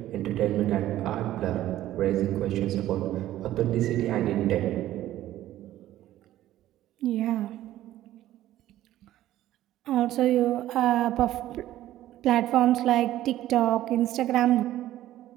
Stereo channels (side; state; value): left; quieter; 13.8 dB